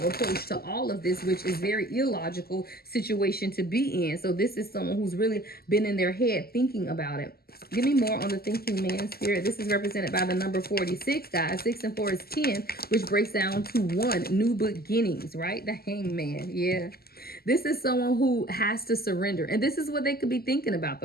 approach to all of this, which is very illogical situation to be in. So this is someone who's really been in their head thinking about it. Give me more on the thinking man spirit. This is represented by the number 46, guys. 6 and 4 is 10, which breaks down to 1, new beginnings, right? The hangman. Yeah. This is someone who has to surrender. And this is what they could be thinking about,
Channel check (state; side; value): late; right; 0.45 ms